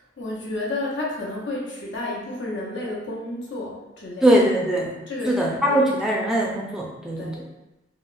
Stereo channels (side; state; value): both; normal; correlation 0.61